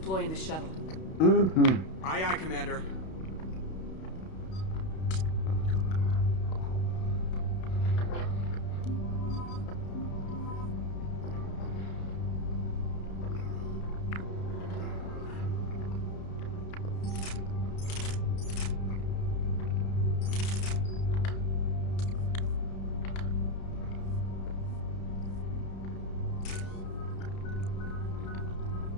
in the shuttle. Aye, aye, Commander.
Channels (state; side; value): late; right; 32 ms